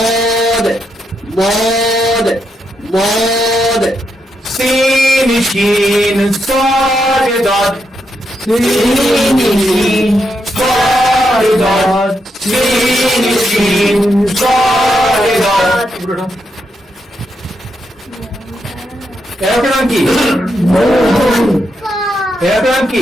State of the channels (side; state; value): both; normal; correlation 0.82